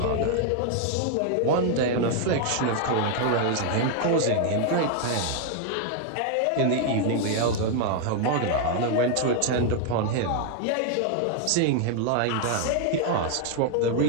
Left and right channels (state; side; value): different; both; correlation 0.00